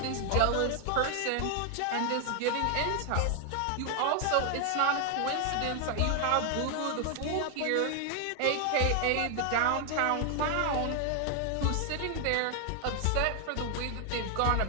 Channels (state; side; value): different; both; correlation 0.00